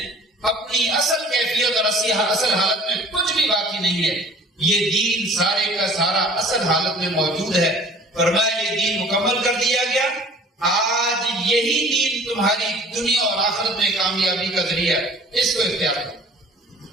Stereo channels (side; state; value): both; normal; correlation 0.48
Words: اپنی اصل کیفیت اور اصل حالت میں کچھ بھی باقی نہیں ہے. یہ دین سارے کا سارا اصل حالت میں موجود ہے. فرمایا یہ دین مکمل کر دیا گیا. آج یہی دین تمہاری دنیا اور آخرت میں کامیابی کا ذریعہ، اس کو اختیار